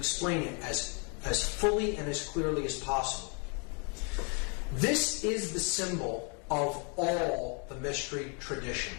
it as fully and as clearly as possible. This is the symbol of all the mystery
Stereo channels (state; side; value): quieter; right; 36.0 dB